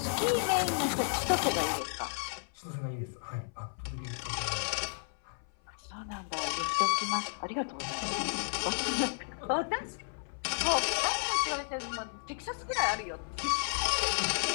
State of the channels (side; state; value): right; silent; 55 dB below the other